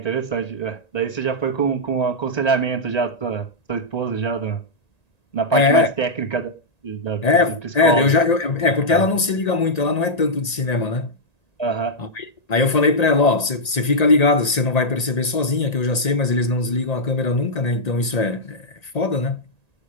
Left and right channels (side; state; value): right; late; 1.9 ms